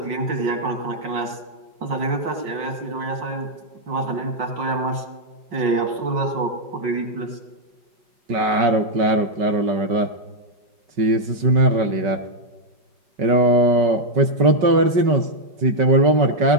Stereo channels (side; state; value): left; late; 5.3 ms